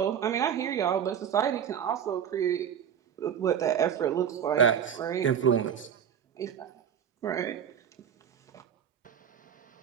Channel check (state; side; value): quieter; left; 8.6 dB